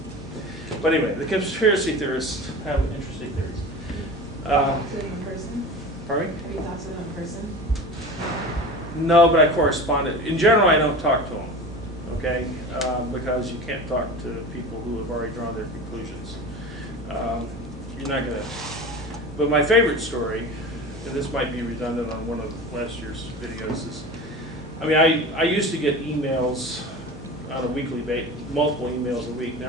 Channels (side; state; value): both; normal; correlation 0.33